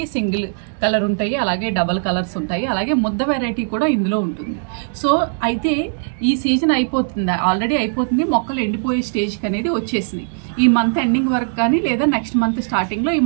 సింగిల్ కలర్ ఉంటాయి, అలాగే డబల్ కలర్స్ ఉంటాయి, అలాగే ముద్ద వెరైటీ కూడా ఇందులో ఉంటుంది. సో అయితే ఈ సీజన్ అయిపోతుంది, ఆల్రెడీ అయిపోతుంది, మొక్కలు ఎండిపోయే స్టేజ్కి అనేది వచ్చేసింది. ఈ మంత్ ఎండింగ్ వరకు కానీ లేదా నెక్స్ట్ మంత్ స్టార్టింగ్లో ఈ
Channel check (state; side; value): silent; left; digital silence